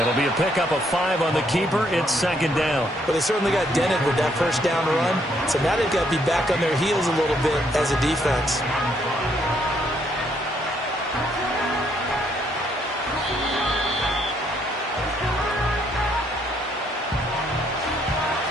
be a pickup of 5 on the keeper. It's 2nd down. But they certainly got dented with that first down run. So now they've got to be back on their heels a little bit as a defense.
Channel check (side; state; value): both; normal; correlation 0.71